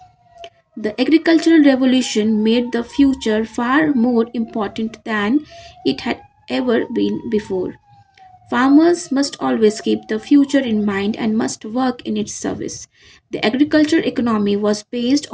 The agricultural revolution made the future far more important than it had ever been before. Farmers must always keep the future in mind and must work in its service. The agriculture economy was based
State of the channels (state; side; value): identical; both; correlation 1.00